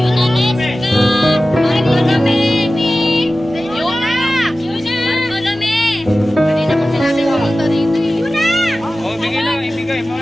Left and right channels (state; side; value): normal; both; correlation 0.95